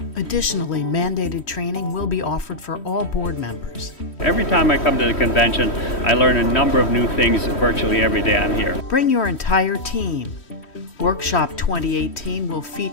Additionally, mandated training will be offered for all board members. Every time I come to the convention, I learn a number of new things virtually every day I'm here. Bring your entire team. Workshop 2018 will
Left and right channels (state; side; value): late; right; 3.1 ms